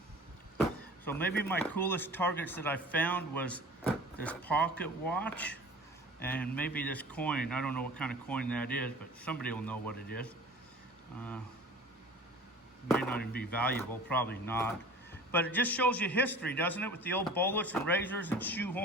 So maybe my coolest targets that I found was this pocket watch and maybe this coin. I don't know what kind of coin that is, but somebody will know what it is. May not even be valuable, probably not. But it just shows you history, doesn't it? With the old bullets and razors and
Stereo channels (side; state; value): both; normal; correlation 0.42